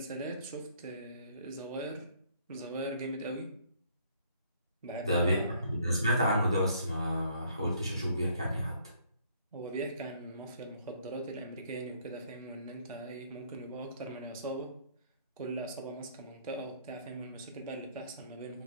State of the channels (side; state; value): both; inverted; correlation -0.63